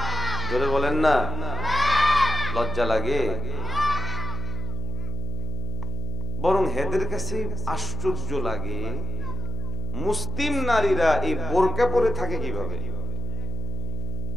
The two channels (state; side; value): noise; left; hum, 6 dB below the sound